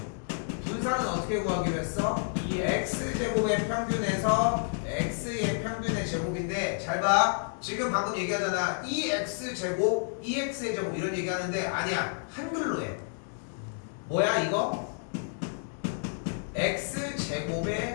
분산은 어떻게 구하기로 했어? 이 x제곱의 평균에서 x의 평균의 제곱인데 잘 봐. 지금 방금 얘기하잖아. 2x제곱, 2x의 제곱 이런 얘기하는데 아니야. 한글로 해. 뭐야 이거?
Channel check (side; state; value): right; silent; 58 dB below the other